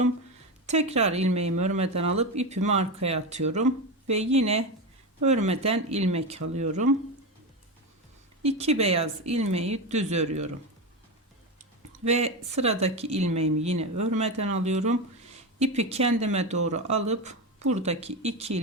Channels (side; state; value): both; normal; correlation 0.16